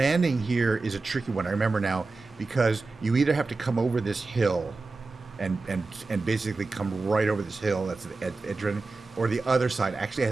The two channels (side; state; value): left; quieter; 3.7 dB